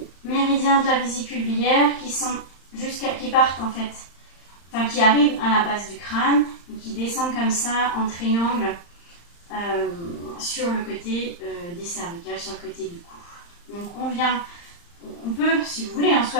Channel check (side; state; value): right; late; 35 ms